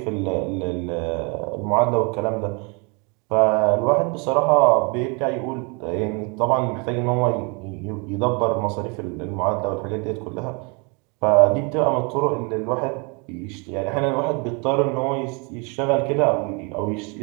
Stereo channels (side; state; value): left; quieter; 32.5 dB